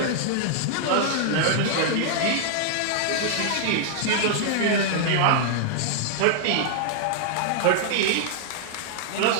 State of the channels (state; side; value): different; both; correlation -0.01